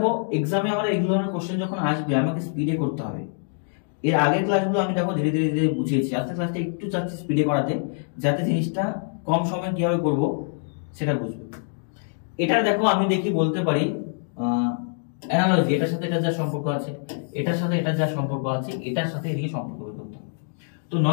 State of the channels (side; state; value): right; silent; 62 dB below the other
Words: এক্সামে আমার এই ধরনের কোশ্চেন যখন আসবে আমাকে স্পিডে করতে হবে। এর আগের ক্লাসগুলো আমি দেখো ধীরে ধীরে ধীরে বুঝিয়েছি, আজকের ক্লাসটা একটু চাচ্ছি স্পিডে করাতে, যাতে জিনিসটা কম সময়ে কিভাবে করব সেটা বুঝবে। এটা দেখো আমি দেখি বলতে পারি অ্যানালজি, এটার সাথে এটা যা সম্পর্ক আছে, এটার সাথে এটা যা সম্পর্ক আছে, এটার সাথে এদিকে সম্পর্ক বের করতে হবে। তো